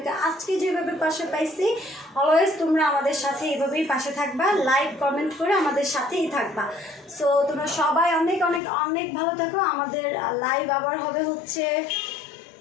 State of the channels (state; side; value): drops out; right; at 8.6 s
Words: আজকে যেভাবে পাশে পাইছি, অলওয়েজ তোমরা আমাদের সাথে এভাবেই পাশে থাকবা, লাইক কমেন্ট করে আমাদের সাথেই থাকবা। সো তোমরা সবাই অনেক অনেক অনেক ভালো থাকো। আমাদের লাইভ আবার হবে হচ্ছে